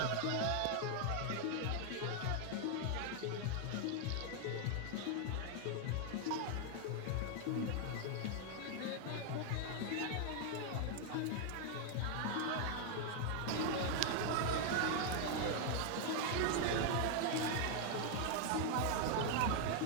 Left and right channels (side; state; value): both; different; correlation 0.00